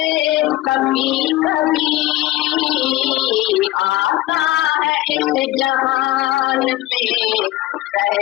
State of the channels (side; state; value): right; quieter; 17.0 dB